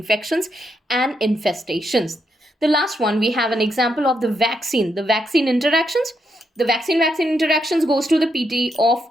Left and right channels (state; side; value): normal; both; correlation 0.80